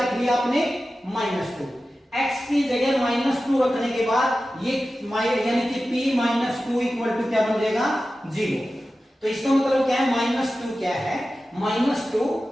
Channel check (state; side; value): normal; both; correlation 0.94